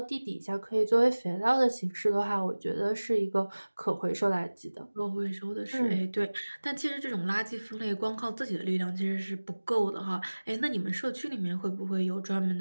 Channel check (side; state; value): both; inverted; correlation -1.00